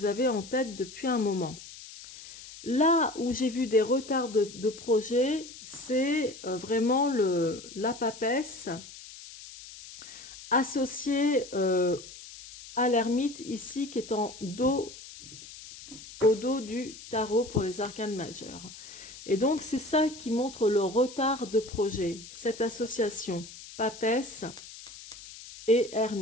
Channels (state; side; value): noise; left; hiss, 16 dB below the sound